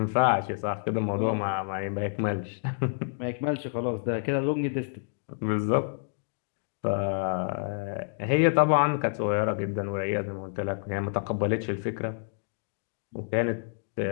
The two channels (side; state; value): right; silent; digital silence